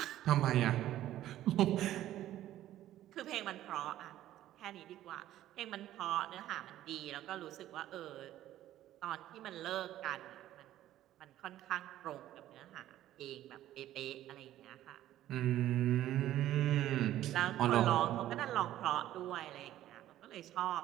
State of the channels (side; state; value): left; quieter; 13.3 dB